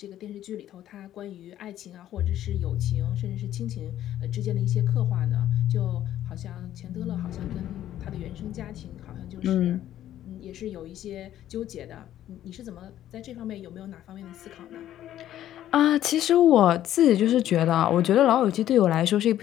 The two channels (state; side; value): quieter; right; 12.2 dB